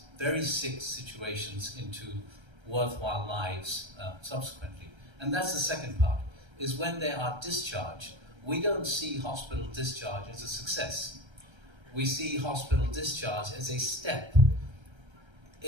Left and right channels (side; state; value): left; late; 1.3 ms